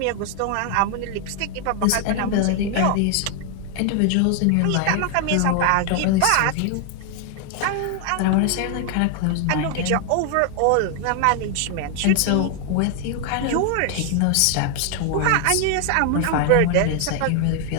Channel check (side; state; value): both; different; correlation 0.00